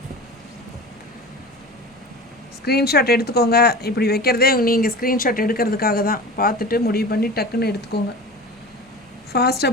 ஸ்க்ரீன்ஷாட் எடுத்துக்கோங்க. இப்படி வைக்கிறதே நீங்கள் ஸ்க்ரீன்ஷாட் எடுக்கிறதுக்காக தான். பார்த்துட்டு முடிவு பண்ணி டக்குன்னு எடுத்துக்கோங்க. ஃபாஸ்ட்டாக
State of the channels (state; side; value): normal; both; correlation 0.35